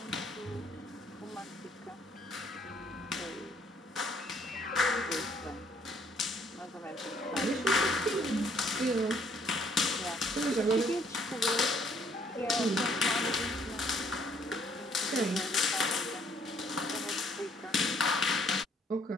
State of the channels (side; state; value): both; normal; correlation 0.65